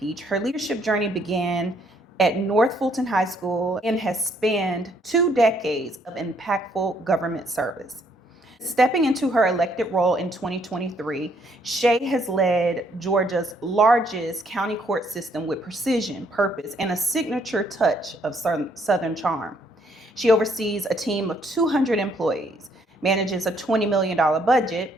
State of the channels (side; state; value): both; normal; correlation 0.68